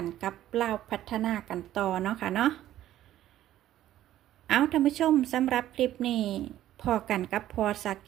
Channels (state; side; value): quieter; left; 13.0 dB